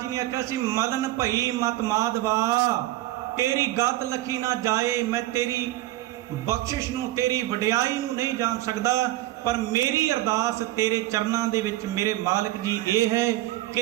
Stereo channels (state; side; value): quieter; left; 16.1 dB